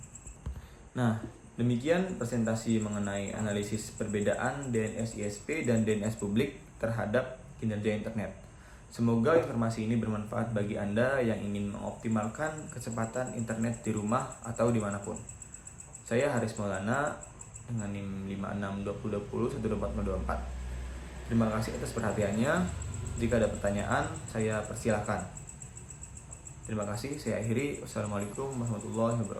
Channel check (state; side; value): identical; both; correlation 1.00